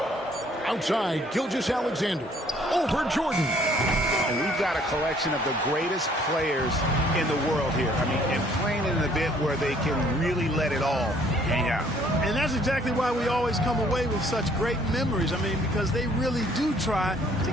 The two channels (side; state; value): both; normal; correlation 0.61